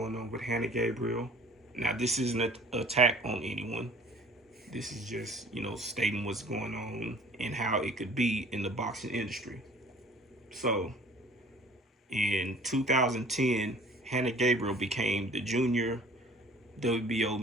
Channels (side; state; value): both; normal; correlation 0.51